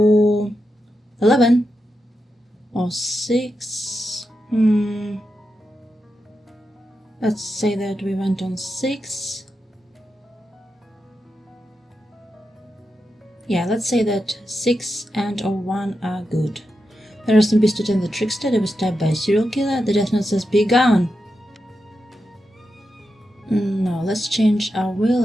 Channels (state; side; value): normal; both; correlation 0.88